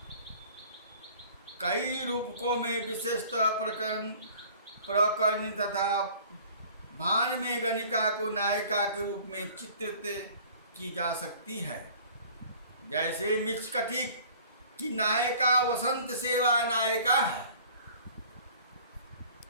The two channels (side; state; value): both; inverted; correlation -0.49